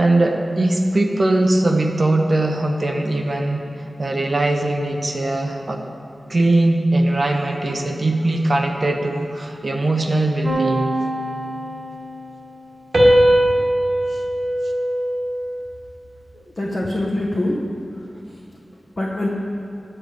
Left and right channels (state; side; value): normal; both; correlation 0.96